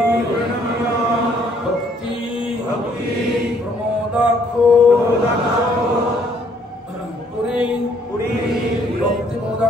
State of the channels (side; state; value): both; normal; correlation 0.65